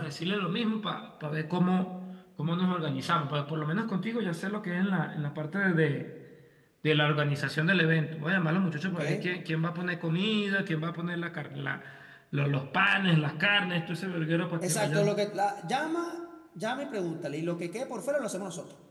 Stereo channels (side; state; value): both; identical; correlation 1.00